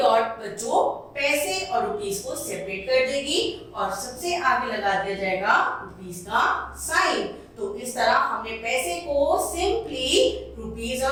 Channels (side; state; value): both; identical; correlation 1.00